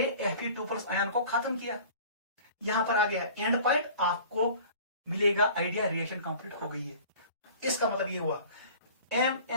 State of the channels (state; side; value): inverted; both; correlation -0.45